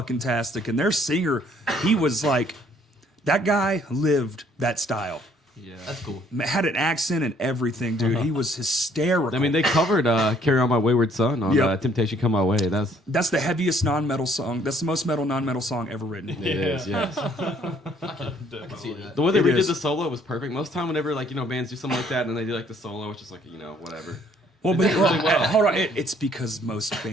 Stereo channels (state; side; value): normal; both; correlation 0.62